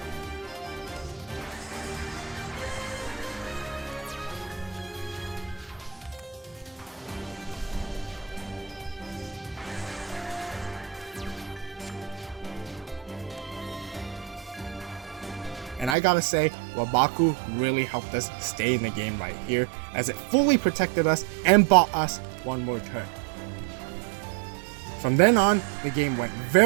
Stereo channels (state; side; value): drops out; left; at 16.0 s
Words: And I gotta say, Wabaku really helped us stay in the game right here, as it fully protected us and bought us one more turn. From then on, the game went